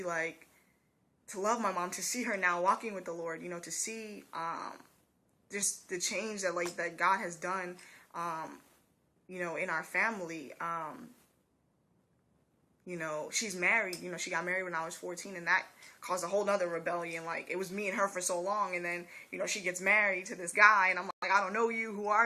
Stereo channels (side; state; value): both; identical; correlation 1.00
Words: like, to love my mom, to see her now walking with the Lord, you know, to see just the change that, like, that God has done, you know, in our family. You know, she's married, you know, she got married when I was 14, and that caused a whole nother rebellion. Like, it was me and her for so long, and then, you know, she gets married to this guy, and I'm like, I don't know you, who